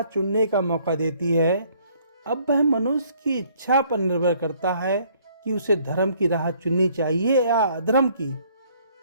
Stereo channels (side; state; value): both; inverted; correlation -0.62